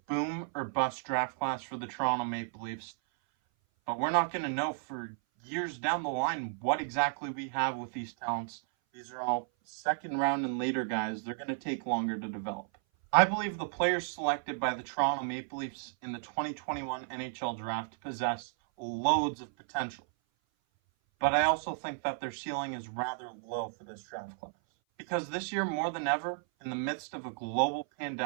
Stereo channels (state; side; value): silent; left; 56 dB below the other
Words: boom or bust draft class for the Toronto Maple Leafs, but we're not going to know for years down the line what exactly we have with these talents. These are all second round and later guys. They're going to take longer to develop. I believe the players selected by the Toronto Maple Leafs in the 2021 NHL Draft possess loads of potential, but I also think that their ceiling is rather low for this draft class. Because this year, more than ever, in the midst of a global